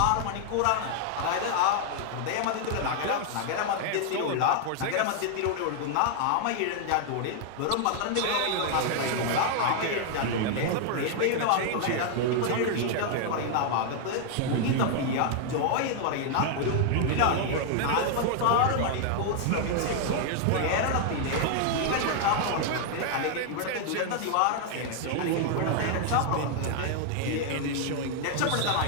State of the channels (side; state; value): both; different; correlation 0.00